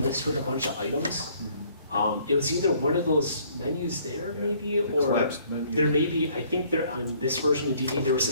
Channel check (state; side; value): inverted; both; correlation -0.61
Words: with a bunch of items. It was either one of those menus there maybe, or collapsed menu. there may be, I think there on this version of DD, there was a